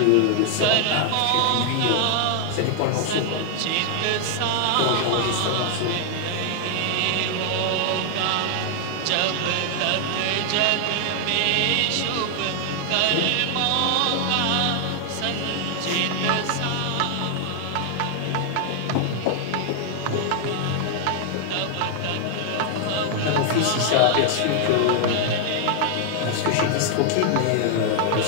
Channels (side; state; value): both; different; correlation 0.00